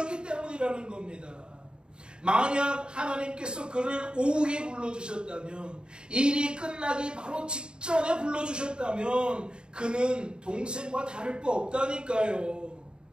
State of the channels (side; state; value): left; late; 0.050 ms